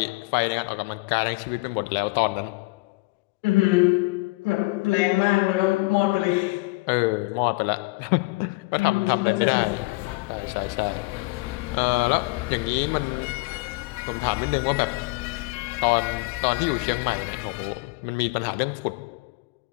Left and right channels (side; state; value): right; quieter; 24.3 dB